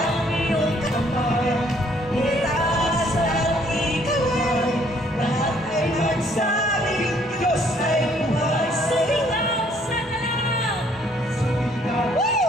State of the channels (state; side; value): normal; both; correlation 0.63